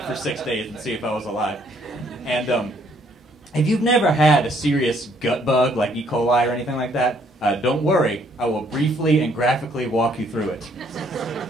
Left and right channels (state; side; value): normal; both; correlation 0.66